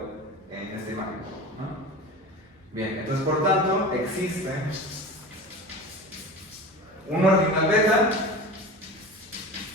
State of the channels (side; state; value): both; normal; correlation 0.33